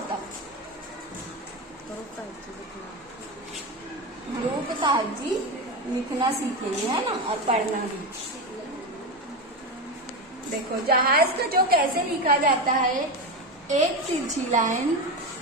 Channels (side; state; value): both; normal; correlation 0.17